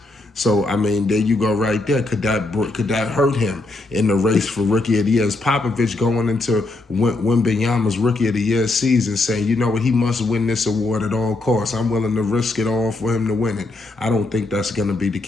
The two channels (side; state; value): right; quieter; 3.0 dB